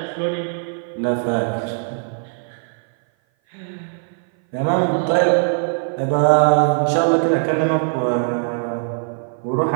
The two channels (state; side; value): silent; left; 57 dB below the other